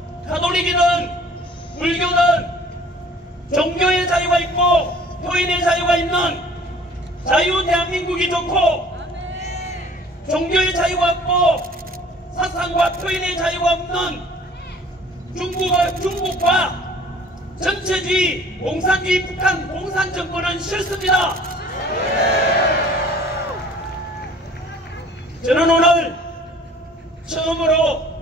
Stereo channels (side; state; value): both; normal; correlation 0.51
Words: 가톨릭이든 불교든 종교의 자유가 있고 표현의 자유가 있는 자유 대한민국이 좋고, 종교의 자유가 없고 사상과 표현의 자유가 없는 중국과 전체주의 공산주의 북한 공산 정권은 싫습니다. 저는 오늘